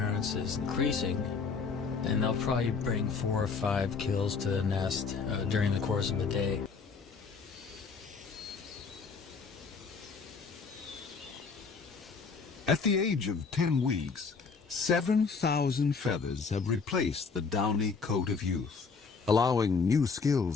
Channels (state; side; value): quieter; right; 5.1 dB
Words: is increasing, and they'll probably bring 4 or 5 kills to the nest during the course of the day. At the age of 10 weeks, 7,000 feathers have replaced the downy coat of youth, allowing new